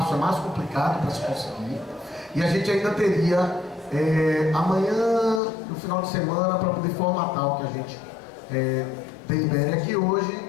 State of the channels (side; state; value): right; drops out; at 5.4 s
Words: é mais complicado para se conseguir. E a gente ainda teria amanhã, no final de semana, para poder formatar o que a gente delibere aqui hoje